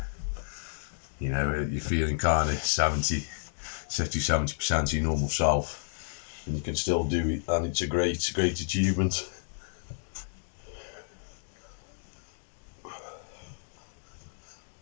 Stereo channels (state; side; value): silent; right; digital silence